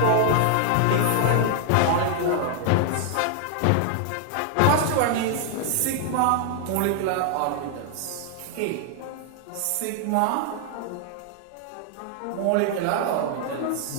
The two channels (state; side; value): different; both; correlation 0.00